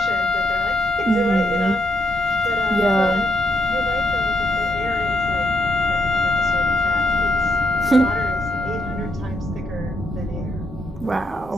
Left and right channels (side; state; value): both; normal; correlation 0.77